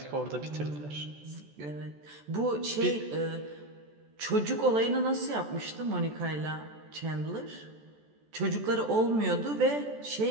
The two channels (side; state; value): left; late; 14 ms